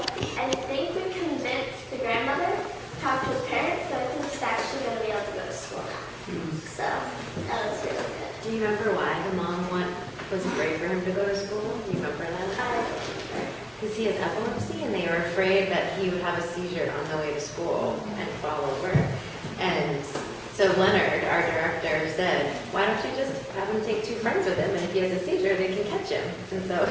I think we convinced the grandmother to talk to his parents, so I think he's actually going to be able to go to school now. So that was really good. Do you remember why the mom was afraid for him to go to school? Do you remember that? Because he has epilepsy, and they were afraid that he would have a seizure on the way to school and fall over. And so Leonard, our director, said, why don't you just have him take 2 friends with him, and if he has a seizure, they can catch him. And so,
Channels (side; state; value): both; identical; correlation 1.00